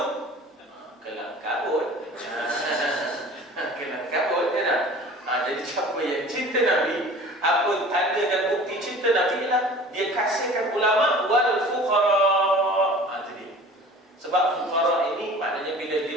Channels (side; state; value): both; normal; correlation 0.43